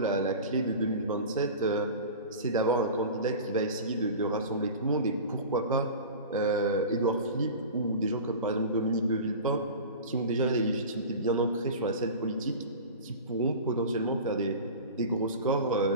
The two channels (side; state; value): both; inverted; correlation -0.34